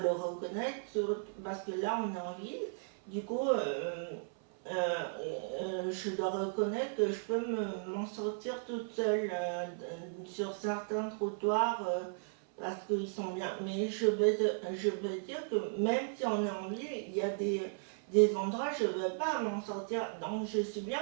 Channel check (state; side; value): silent; left; 54 dB below the other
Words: reconnaître, parce que là on est en ville, du coup je dois reconnaître que je peux m'en sortir toute seule sur certains trottoirs parce qu'ils sont bien. Mais je veux dire que même si on est en ville, il y a des endroits où je ne vais pas m'en sortir. Donc je suis bien